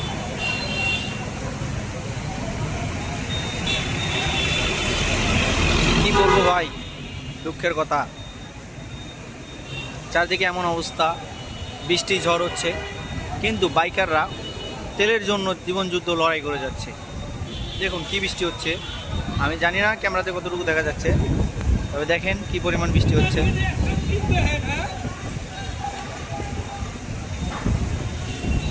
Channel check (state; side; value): identical; both; correlation 1.00